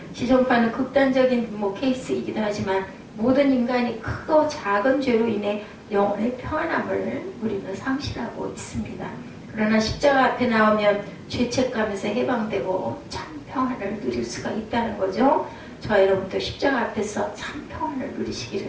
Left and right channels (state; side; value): identical; both; correlation 1.00